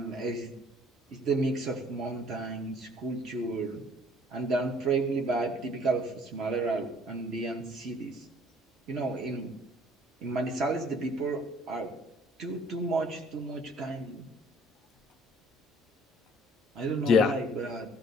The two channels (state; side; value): normal; both; correlation 0.57